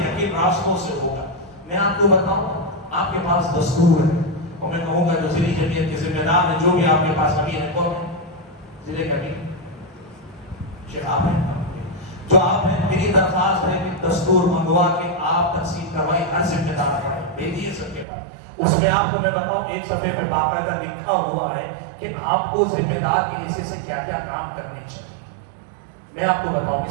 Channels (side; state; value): left; drops out; at 18.1 s